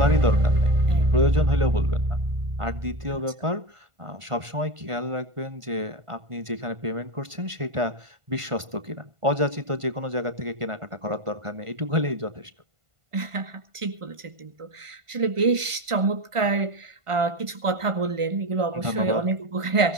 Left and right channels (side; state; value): left; late; 1.5 ms